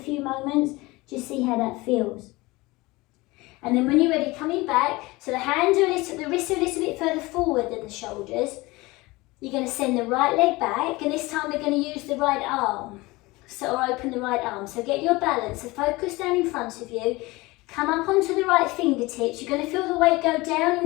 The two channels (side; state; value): right; quieter; 21.9 dB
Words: moments. Just see how that feels. And then when you're ready, coming back, so the hands are the wrists are a little bit further forward than the shoulders. You're going to send the right leg back, and this time we're going to use the right arm. Or open the right arm. So get your balance. So focus down in front of you. Come up onto the right fingertips. You're going to feel the weight go down